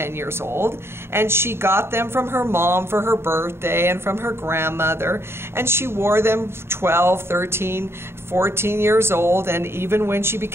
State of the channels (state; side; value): late; left; 0.12 ms